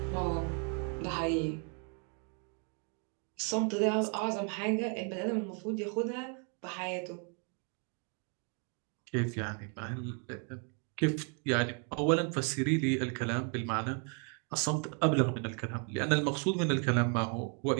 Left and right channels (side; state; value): left; quieter; 39.5 dB